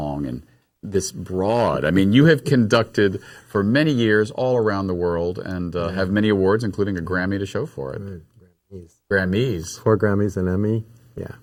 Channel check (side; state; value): both; identical; correlation 1.00